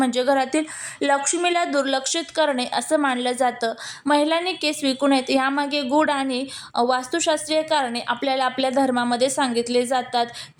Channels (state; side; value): identical; both; correlation 1.00